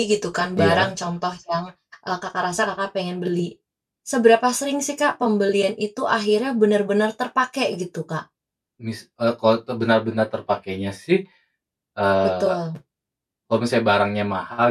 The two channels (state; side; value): identical; both; correlation 1.00